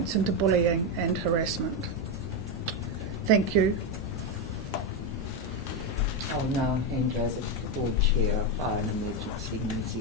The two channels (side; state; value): both; normal; correlation 0.08